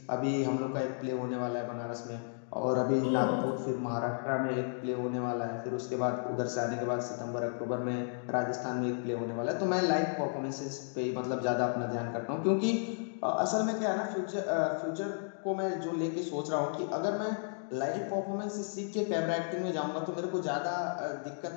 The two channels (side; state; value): right; silent; digital silence